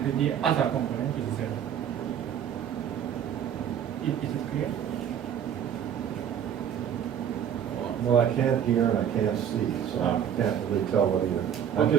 the other component is 0. Is it clear? Well, I can't hear and I can't see, so I can't really tell what either. I'm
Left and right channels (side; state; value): left; quieter; 9.0 dB